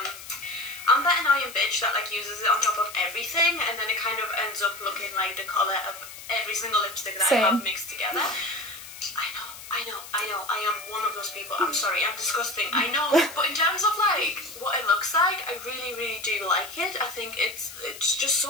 I'm that annoying bitch that like uses it on top of everything and then it kind of ends up looking like the colour of every single lipstick that I have mixed together. I am one of those people. I'm sorry, I'm disgusting, I know, but in terms of like what it looks like, I really do like it. I think it's just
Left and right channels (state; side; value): noise; left; hiss, 14 dB below the sound